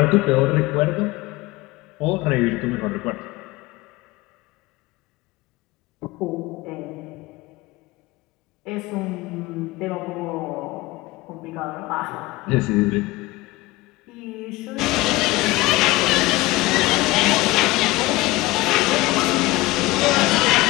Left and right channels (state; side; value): quieter; right; 20.1 dB